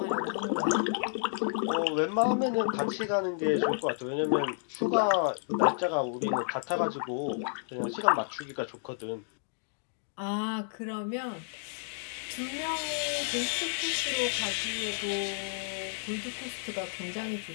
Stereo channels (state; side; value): silent; right; digital silence